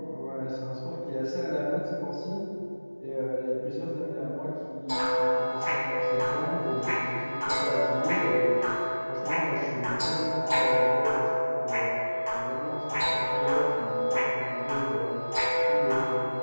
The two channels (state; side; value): inverted; both; correlation -1.00